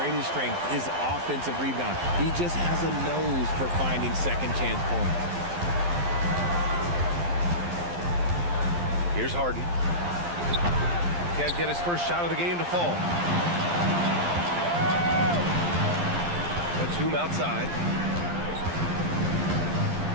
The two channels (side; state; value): left; late; 11 ms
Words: strengths is offensive rebound. He just has a nose for finding second chance points. Here's Harden. Can't get his first shot of the game to fall. Batum outside.